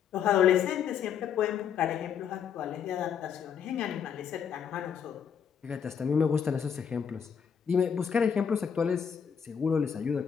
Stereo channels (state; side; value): quieter; right; 7.6 dB